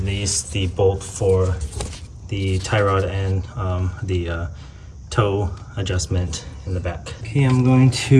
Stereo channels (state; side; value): identical; both; correlation 1.00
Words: the bolt for the tie rod and the toe adjustment in the back. Okay, I'm going